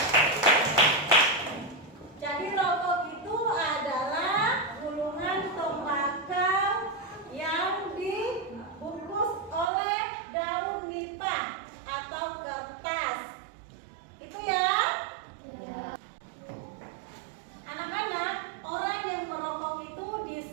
Jadi rokok itu adalah gulungan tembakau yang dibungkus oleh daun nipah atau kertas. Itu ya. Anak-anak, orang yang merokok itu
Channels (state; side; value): drops out; left; at 9.7 s